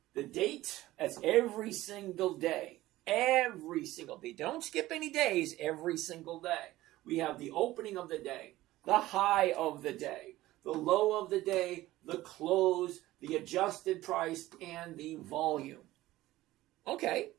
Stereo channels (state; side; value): quieter; left; 16.6 dB